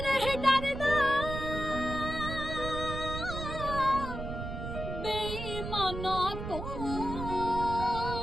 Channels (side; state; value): right; noise; rumble, 6 dB below the sound